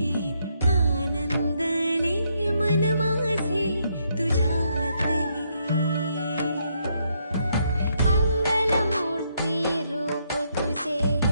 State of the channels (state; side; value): inverted; both; correlation -0.75